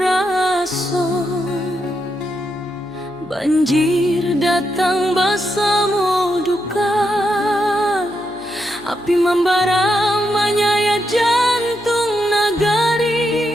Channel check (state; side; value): noise; left; hum, 29 dB below the sound